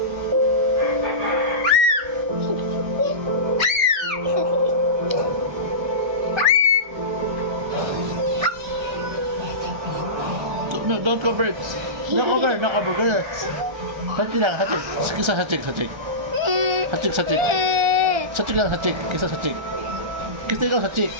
No, don't cover it. No cover, no cover. Ganyan. Hatik lang, hatik. Kisa hatik, hatik. Hatik, hatik. Hatik lang, hatik. Kisa hatik. Kisa ikaw hatik,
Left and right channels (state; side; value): late; left; 1.4 ms